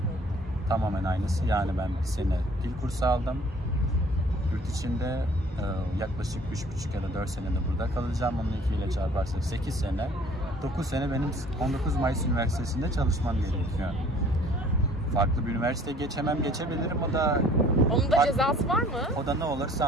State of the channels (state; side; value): normal; both; correlation 0.54